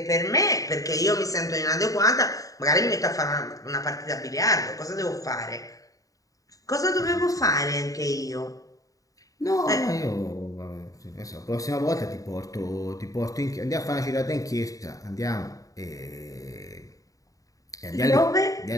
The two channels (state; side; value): late; right; 0.17 ms